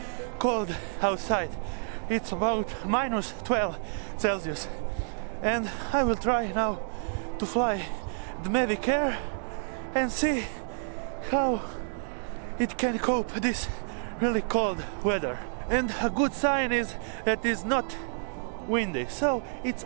cold outside. It's about minus 12 Celsius. And I will try now to fly the MAVIC Air and see how it can cope this really cold weather. And a good sign is that it's not windy, so it's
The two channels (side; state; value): left; silent; digital silence